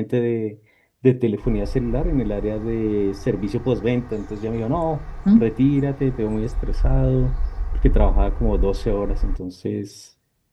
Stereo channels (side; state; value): both; identical; correlation 1.00